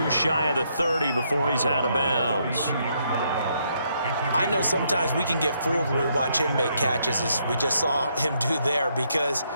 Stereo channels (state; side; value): inverted; both; correlation -0.74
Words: shy of the 30 before he's out of bounds. I know sometimes we can get fooled when we watch him make catches, as we just saw him do there, because